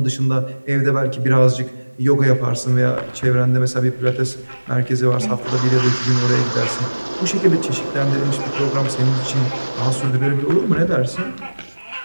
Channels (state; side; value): inverted; both; correlation -1.00